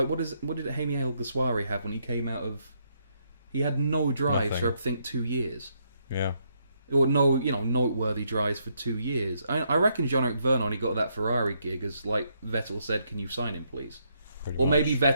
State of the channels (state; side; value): inverted; both; correlation -0.75